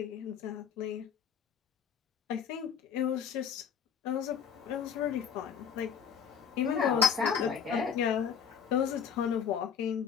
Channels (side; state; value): right; quieter; 7.3 dB